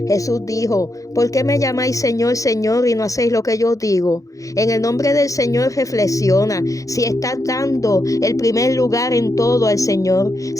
Jesús dijo, ¿por qué me llamáis Señor, Señor y no hacéis lo que yo digo? En el nombre del Señor reflexiona. Si estás dando el primer lugar en todo al Señor,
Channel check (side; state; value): right; late; 0.16 ms